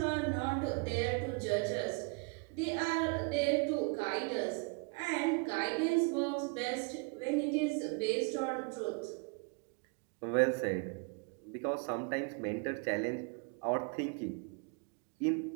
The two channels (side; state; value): left; quieter; 33.7 dB